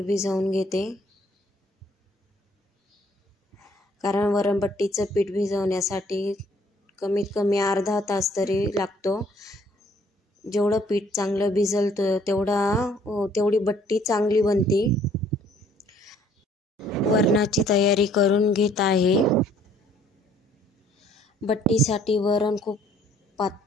भिजवून घेते, कारण वरणबट्टीचे पीठ भिजवण्यासाठी कमीत कमी अर्धा तास तरी लागतो। जेवढं पीठ चांगलं भिजल तेवढी बट्टी चांगली बनते। वरणाची तयारी करून घेत आहे। बट्टीसाठी वरण खूप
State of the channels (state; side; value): normal; both; correlation 0.61